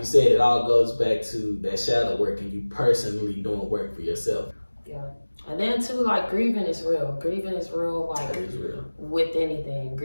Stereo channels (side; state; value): both; inverted; correlation -1.00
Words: said, it all goes back to that shadow work and you personally doing work for yourself. Yeah. And then too, grieving is real. Grieving is real, It is real. with anything.